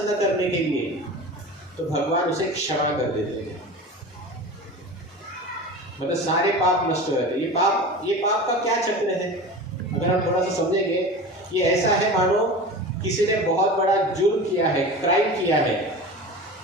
करने के लिए, तो भगवान उसे क्षमा कर देते हैं। मतलब सारे पाप नष्ट हो जाते हैं। ये पाप का क्या चक्र है, अगर हम थोड़ा सा समझेंगे, ये ऐसा है मानो किसी ने बहुत बड़ा जुर्म किया है, क्राइम किया है,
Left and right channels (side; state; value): both; normal; correlation 0.33